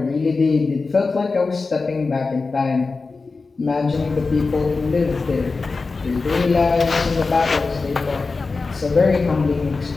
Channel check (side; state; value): right; quieter; 4.1 dB